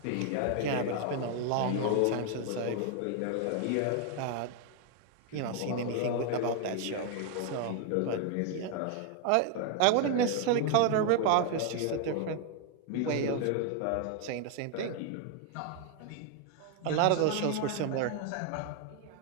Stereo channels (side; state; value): both; different; correlation 0.01